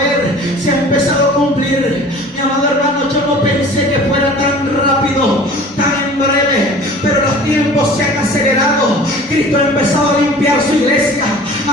se ha empezado a cumplir. Mi amado hermano, yo no pensé que fuera tan rápido, tan en breve, pero los tiempos se han acelerado. Cristo ha empezado a limpiar su iglesia,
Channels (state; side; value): normal; both; correlation 0.44